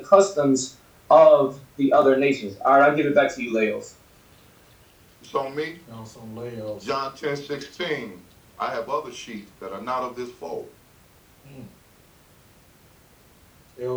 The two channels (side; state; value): both; identical; correlation 1.00